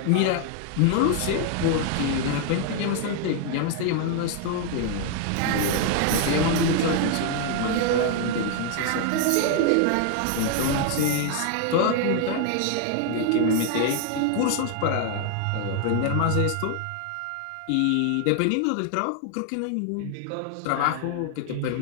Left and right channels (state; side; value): different; both; correlation 0.00